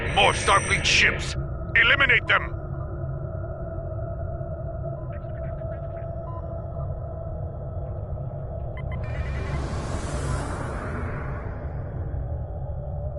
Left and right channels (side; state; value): both; identical; correlation 1.00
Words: More Starfleet ships! Eliminate them!